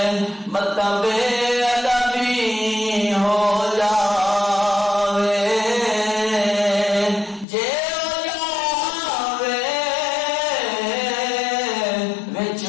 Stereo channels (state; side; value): drops out; right; at 7.5 s